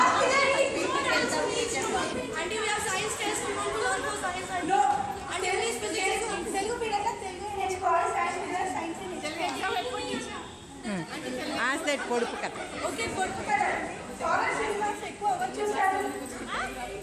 period. Auntie, we have science test. We want to learn for science. No, Telugu period Telugu నేర్చుకోవాలి. సైన్స్ పీరియడ్ సైన్స్ నేర్చుకోవాలి. పొడుపు కథ. ఓకే, పొడుపు కదా. ఫారెస్ట్ సినిమాస్ ఎక్కువ ఎవరు చూస్తారు?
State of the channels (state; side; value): identical; both; correlation 1.00